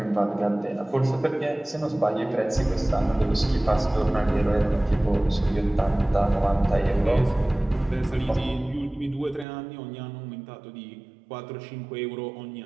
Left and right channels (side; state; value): left; drops out; at 9.5 s